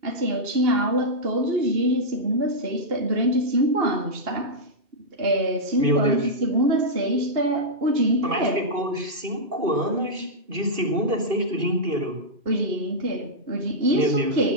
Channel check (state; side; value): late; left; 2.5 ms